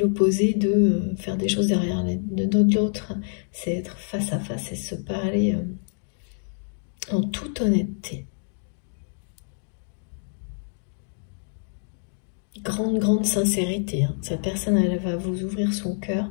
de faire des choses derrière de l'autre. C'est être face à face et se parler en toute honnêteté. Grande sincérité. Hein. Cette personne, elle va vous ouvrir son cœur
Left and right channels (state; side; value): silent; right; digital silence